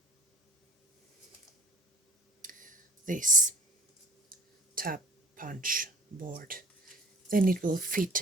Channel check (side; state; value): both; normal; correlation 0.50